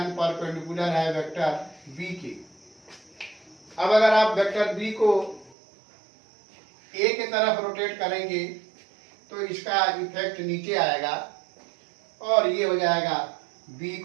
perpendicular है वेक्टर बी के। अब अगर आप वेक्टर बी को ए के तरफ रोटेट करेंगे तो इसका इफेक्ट नीचे आएगा और ये हो जाएगा बी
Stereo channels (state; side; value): drops out; left; at 5.6 s